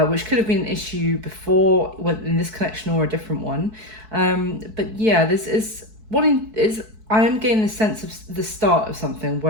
which could have been an issue before in this connection or a different one. But yeah, I am getting the sense of the start of something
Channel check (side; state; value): left; late; 4.6 ms